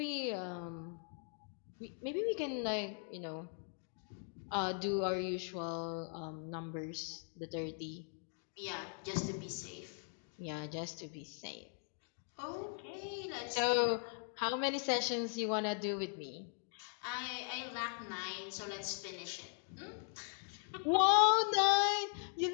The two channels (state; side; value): silent; right; 51 dB below the other